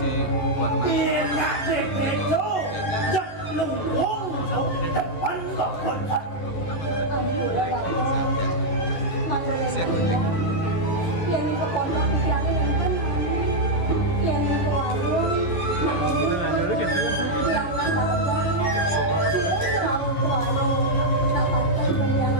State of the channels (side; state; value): right; late; 11 ms